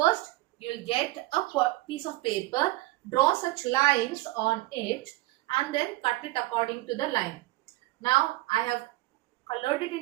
you will get a piece of paper, draw such lines on it, and then cut it according to the line. Now I have colored it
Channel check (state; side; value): quieter; left; 19.4 dB